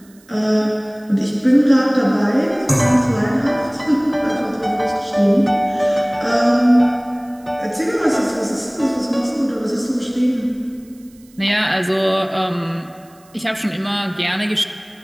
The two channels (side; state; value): right; noise; hiss, 29 dB below the sound